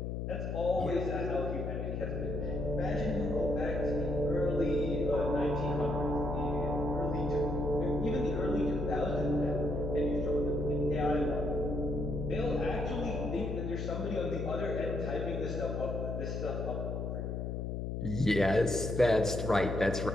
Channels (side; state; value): left; noise; hum, 3 dB below the sound